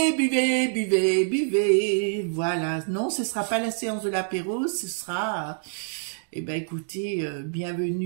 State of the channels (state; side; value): silent; left; digital silence